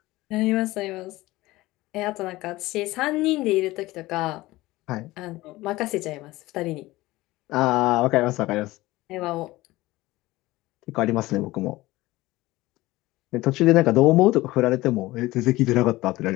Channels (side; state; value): right; quieter; 18.7 dB